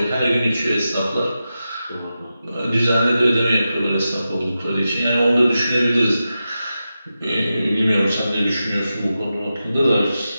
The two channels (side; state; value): both; inverted; correlation -0.91